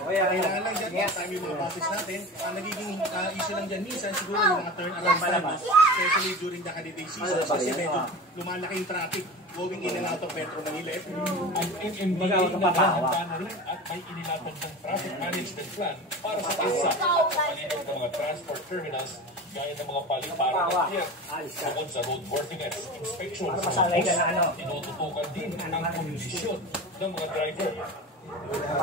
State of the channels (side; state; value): both; normal; correlation 0.31